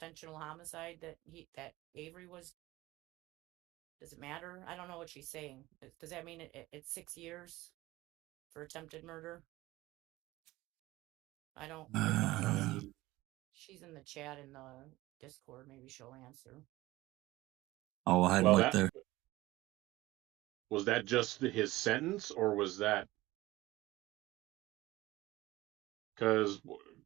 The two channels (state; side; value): quieter; left; 18.4 dB